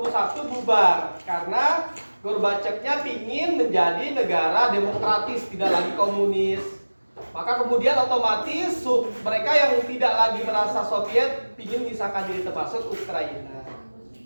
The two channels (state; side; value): inverted; both; correlation -1.00